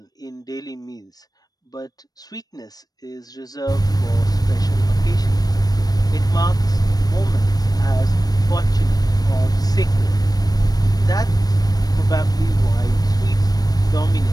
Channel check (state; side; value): late; right; 0.19 ms